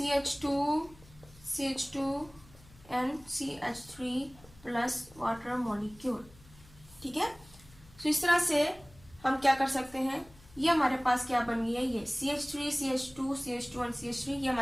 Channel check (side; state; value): left; noise; hum, 24 dB below the sound